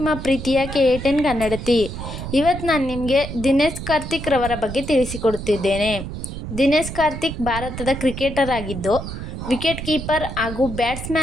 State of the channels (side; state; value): right; noise; rumble, 8 dB below the sound